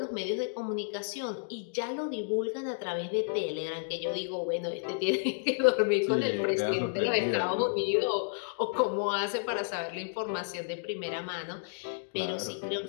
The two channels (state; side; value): silent; right; digital silence